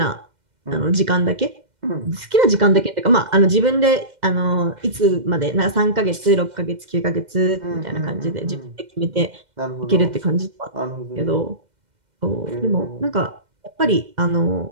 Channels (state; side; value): late; left; 2.1 ms